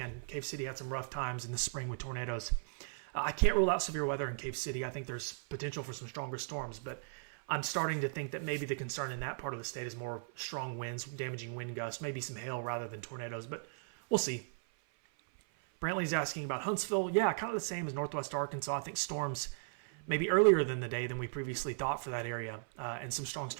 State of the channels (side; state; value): left; silent; 53 dB below the other